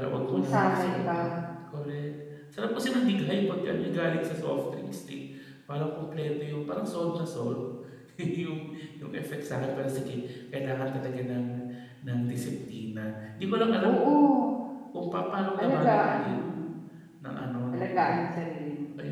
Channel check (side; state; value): both; identical; correlation 1.00